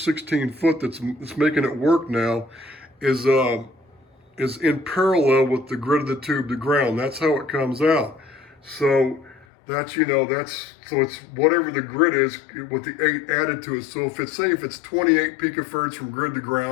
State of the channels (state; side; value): drops out; right; at 9.5 s